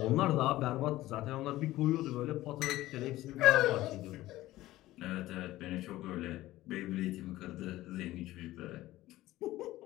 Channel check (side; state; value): right; quieter; 16.3 dB